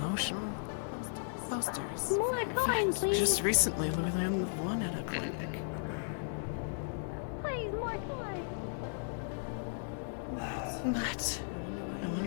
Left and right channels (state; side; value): silent; right; digital silence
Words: posters. More coin, please. Just recently, we landed one at a picnic. Please, more coin. What? I